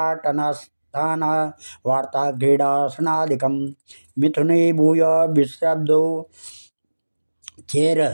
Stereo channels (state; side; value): inverted; both; correlation -1.00